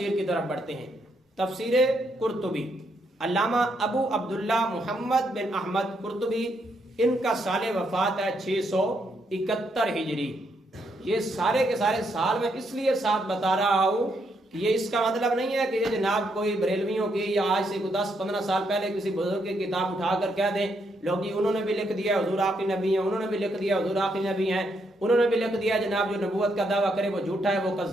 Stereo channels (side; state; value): both; normal; correlation 0.76